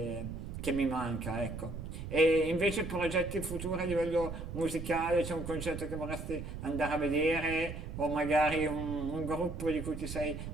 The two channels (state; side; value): noise; right; rumble, 8 dB below the sound